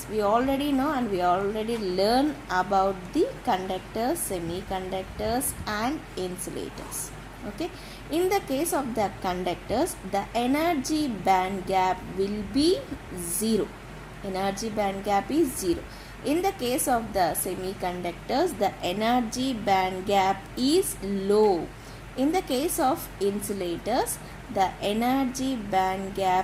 we already know, and we already learn about the conductors, semiconductors and insulators. Okay, in the case of the conductors, the energy band gap will be 0. Energy band gap is 0. In the case of the semiconductors, the energy band gap is low. In the case of insulators, the energy band gap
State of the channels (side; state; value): both; identical; correlation 1.00